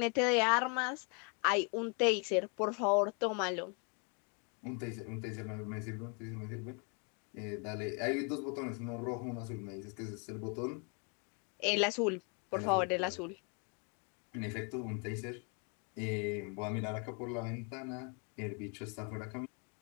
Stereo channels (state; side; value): quieter; right; 37.1 dB